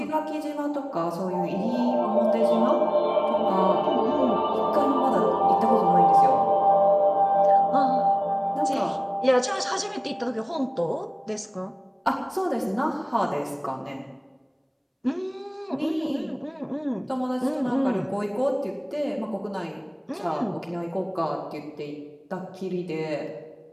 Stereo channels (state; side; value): identical; both; correlation 1.00